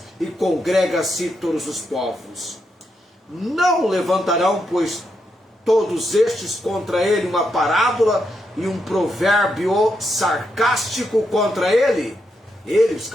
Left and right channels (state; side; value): normal; both; correlation 0.82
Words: e congrega a si todos os povos. Não levantarão, pois, todos estes contra ele uma parábola e um provérbio sarcástico contra ele? Ele, os